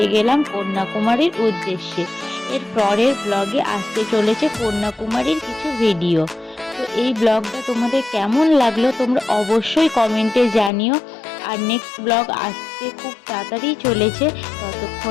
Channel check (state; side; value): drops out; right; at 10.7 s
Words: গেলাম কন্যাকুমারীর উদ্দেশ্যে। এর পরের ব্লগে আসতে চলেছে কন্যাকুমারীর কিছু ভিডিও। তো এই ব্লগটা তোমাদের কেমন লাগলো তোমরা অবশ্যই কমেন্টে জানিও। আর নেক্সট ব্লগ আসতে খুব তাড়াতাড়ি চলেছে।